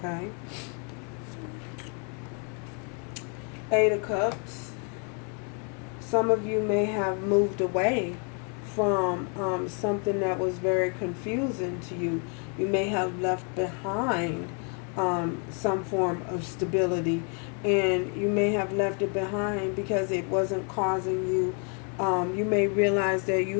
Eight of Cups. Some of you may have moved away from something that was very confusing to you. You may have left behind some form of stability, and you may have left it behind because it wasn't causing you. You may realize that you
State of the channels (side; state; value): right; quieter; 39.5 dB